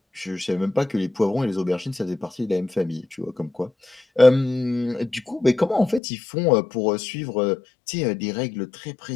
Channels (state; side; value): drops out; right; at 6.0 s